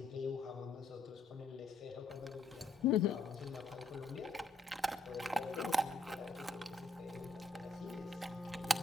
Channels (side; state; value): right; quieter; 3.1 dB